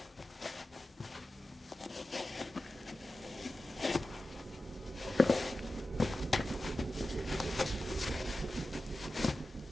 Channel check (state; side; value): normal; both; correlation 0.94